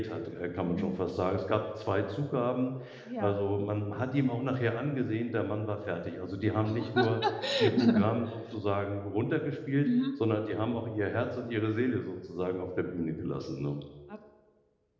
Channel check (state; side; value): identical; both; correlation 1.00